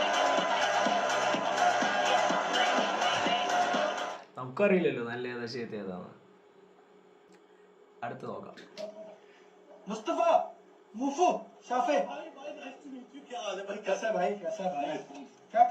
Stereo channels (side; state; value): both; identical; correlation 1.00